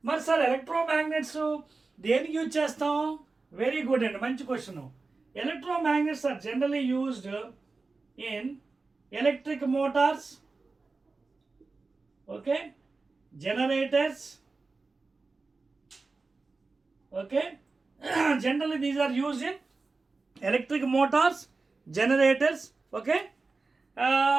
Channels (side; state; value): left; quieter; 3.8 dB